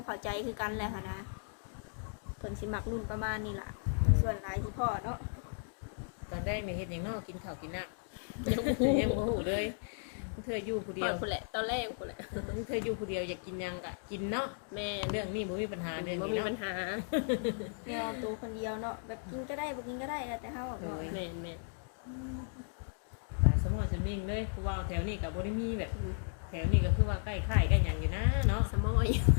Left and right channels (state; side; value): silent; right; digital silence